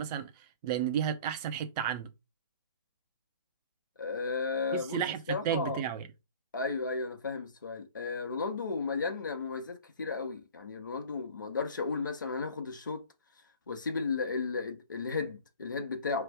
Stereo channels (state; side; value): inverted; both; correlation -0.43